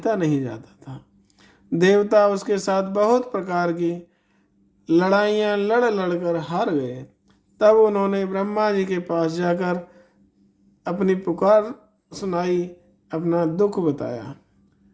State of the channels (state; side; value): identical; both; correlation 1.00